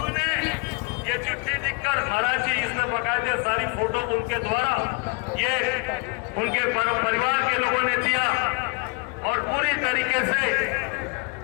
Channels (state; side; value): quieter; right; 29.8 dB